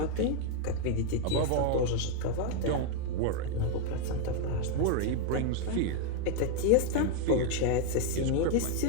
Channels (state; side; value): different; both; correlation 0.00